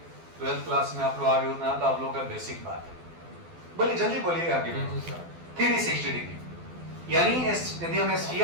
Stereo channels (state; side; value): late; left; 12 ms